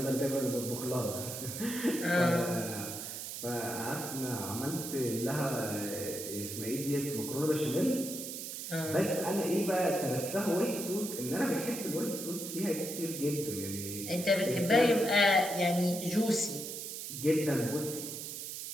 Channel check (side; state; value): right; noise; hiss, 7 dB below the sound